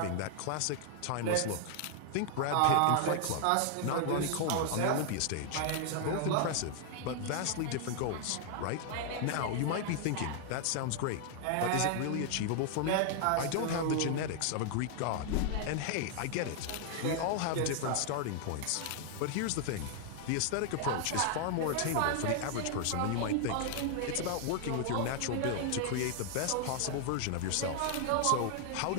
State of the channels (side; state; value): both; different; correlation 0.00